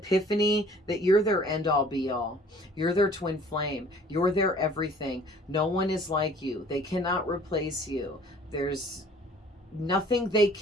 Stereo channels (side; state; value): both; normal; correlation 0.53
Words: that you're their end all be all. You're their twin flame. You're their everything. No one is like you. They cannot replace you. There's nothing they